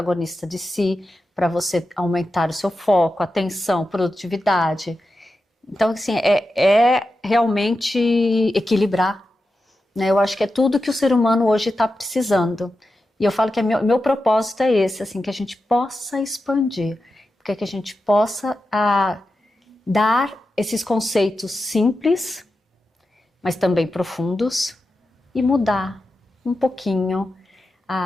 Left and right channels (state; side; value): normal; both; correlation 0.91